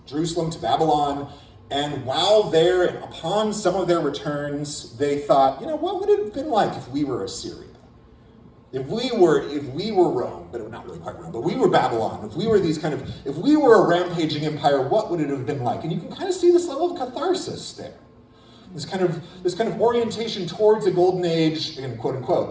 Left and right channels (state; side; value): identical; both; correlation 1.00